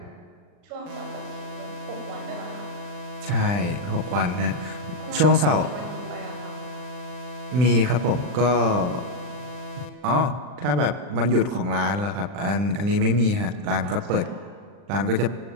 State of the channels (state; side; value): late; left; 40 ms